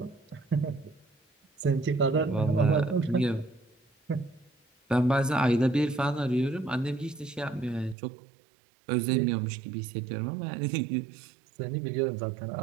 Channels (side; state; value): left; drops out; at 8.0 s